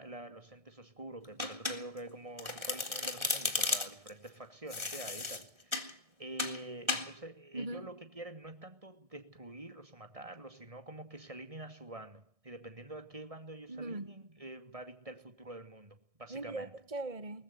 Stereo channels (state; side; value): late; left; 1.6 ms